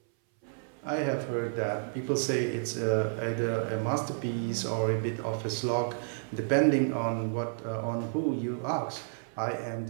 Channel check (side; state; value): left; silent; 57 dB below the other